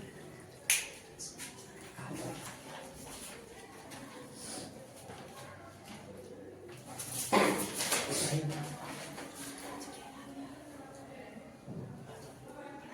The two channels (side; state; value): both; identical; correlation 1.00